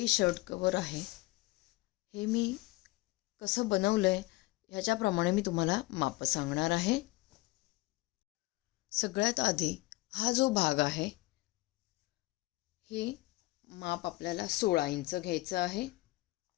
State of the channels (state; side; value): quieter; right; 20.8 dB